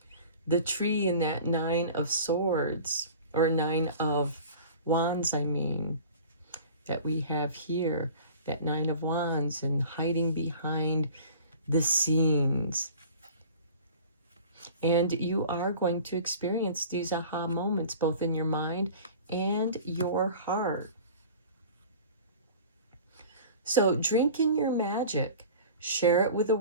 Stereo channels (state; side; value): inverted; both; correlation -0.42